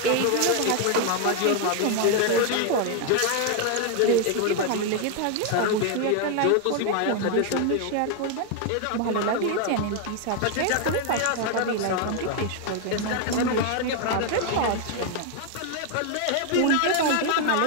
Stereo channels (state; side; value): different; both; correlation 0.01